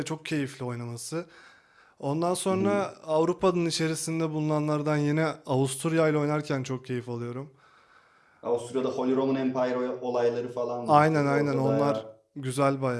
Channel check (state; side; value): identical; both; correlation 1.00